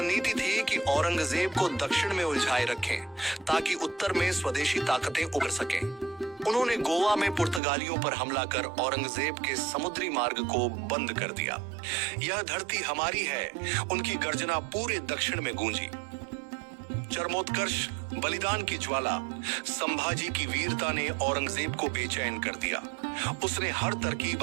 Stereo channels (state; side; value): drops out; left; at 7.6 s